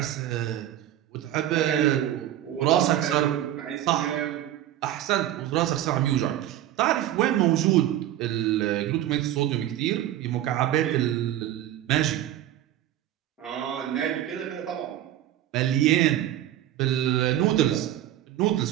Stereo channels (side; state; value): left; quieter; 12.7 dB